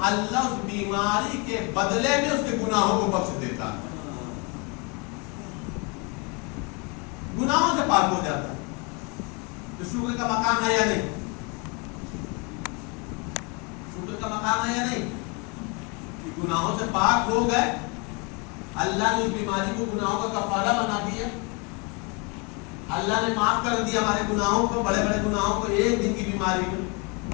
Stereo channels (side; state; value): right; quieter; 31.5 dB